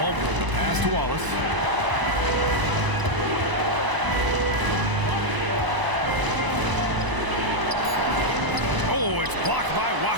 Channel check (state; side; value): late; left; 1.0 ms